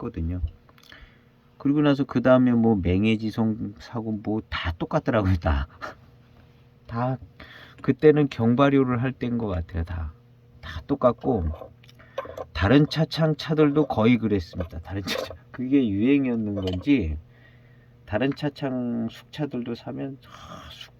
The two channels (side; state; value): both; identical; correlation 1.00